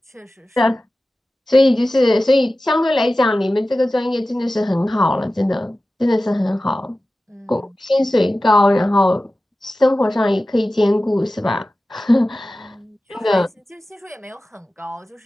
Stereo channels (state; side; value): normal; both; correlation 0.95